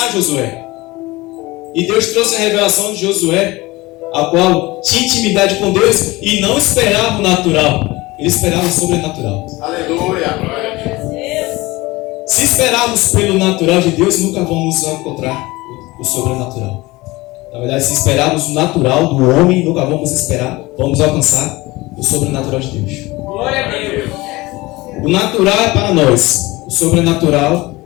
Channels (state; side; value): quieter; right; 20.9 dB